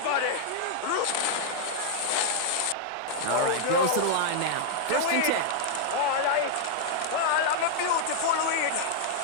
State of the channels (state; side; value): different; both; correlation -0.01